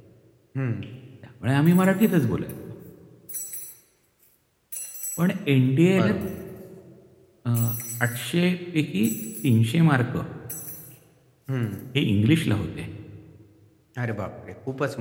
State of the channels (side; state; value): both; identical; correlation 1.00